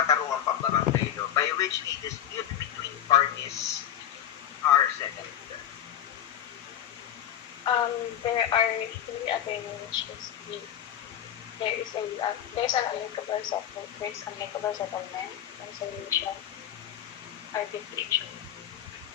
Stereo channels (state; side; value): quieter; right; 10.4 dB